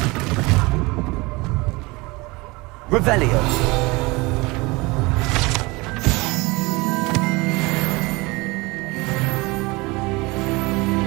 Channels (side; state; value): left; quieter; 24.1 dB